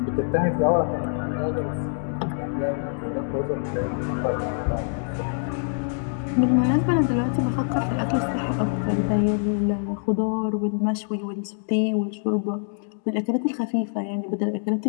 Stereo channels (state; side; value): silent; right; digital silence